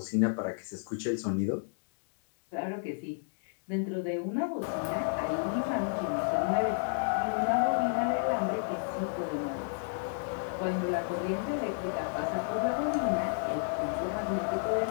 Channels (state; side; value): silent; right; digital silence